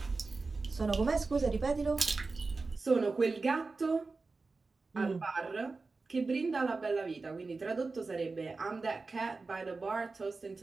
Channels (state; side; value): quieter; left; 3.9 dB